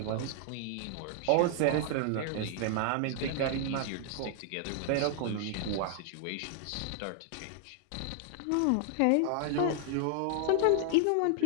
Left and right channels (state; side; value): different; both; correlation 0.00